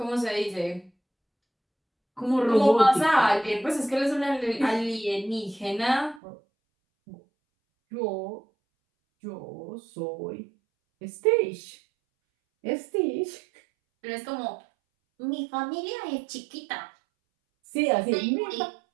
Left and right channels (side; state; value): left; drops out; at 6.2 s